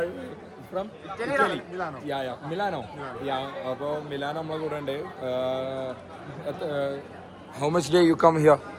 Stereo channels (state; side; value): identical; both; correlation 1.00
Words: മിലാനോ. അപ്പൊ മിലാനോ നമ്മളെ കൂടെ ഉണ്ട്. How much day you come here?